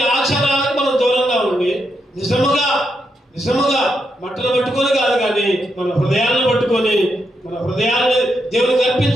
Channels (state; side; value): normal; both; correlation 0.82